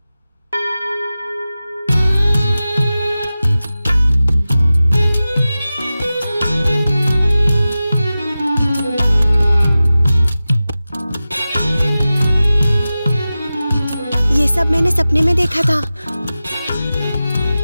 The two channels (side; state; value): both; inverted; correlation -0.95